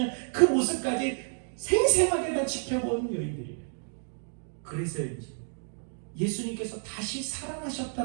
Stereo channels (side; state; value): left; silent; 58 dB below the other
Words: 그 모습까지 생생하게 다 지켜본 여인들이에요. 그래서인지 예수님께서 다시